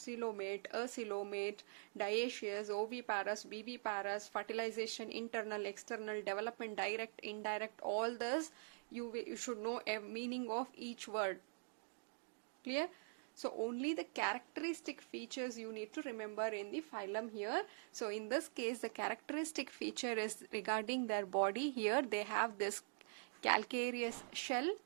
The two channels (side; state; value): left; silent; digital silence